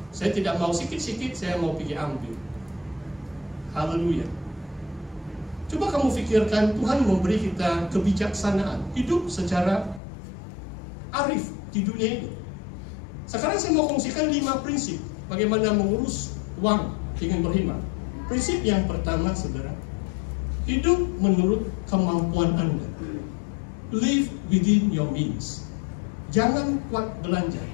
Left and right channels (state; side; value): drops out; right; at 10.0 s